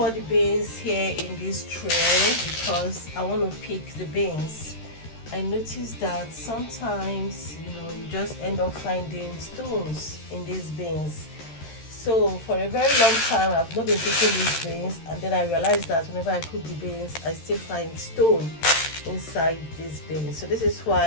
the beans here in this tray because I want to pick the beans. I noticed that sometimes, you just end up finding stones in these beans. So for a very long time, I've not been picking these beans, and then I realized that whenever I cook the beans, I still find stone inside these beans. So this is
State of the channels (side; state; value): right; late; 13 ms